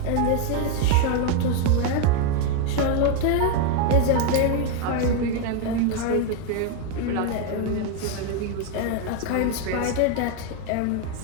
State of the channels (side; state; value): both; different; correlation 0.01